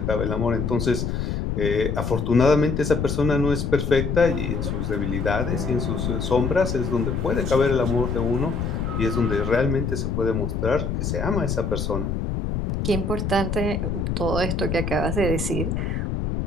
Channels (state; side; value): noise; left; rumble, 1 dB below the sound